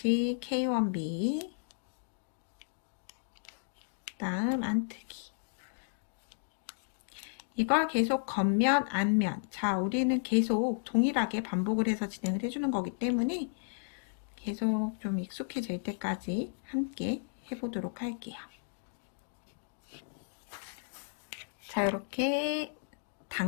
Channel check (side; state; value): right; silent; digital silence